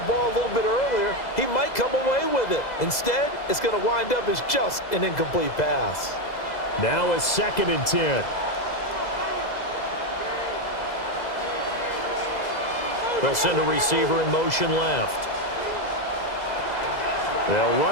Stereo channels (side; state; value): right; late; 2.0 ms